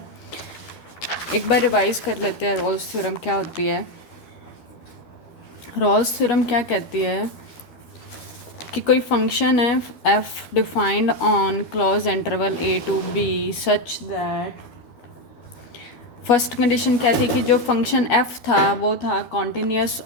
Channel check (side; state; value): right; late; 13 ms